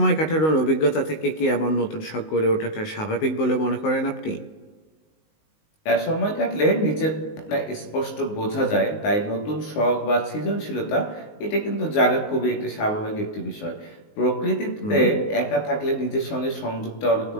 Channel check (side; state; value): right; late; 19 ms